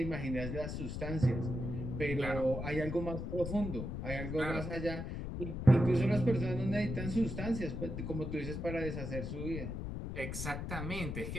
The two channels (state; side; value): noise; left; rumble, 4 dB below the sound